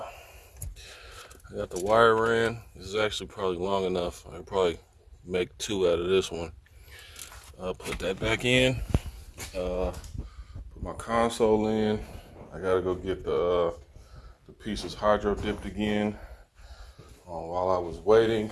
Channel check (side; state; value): both; identical; correlation 1.00